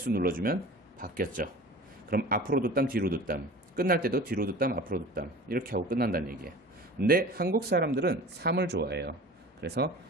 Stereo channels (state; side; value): normal; both; correlation 0.39